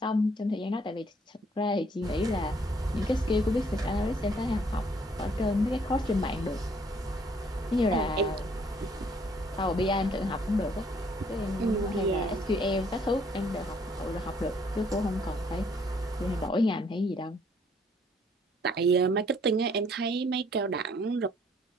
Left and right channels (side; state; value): both; normal; correlation 0.64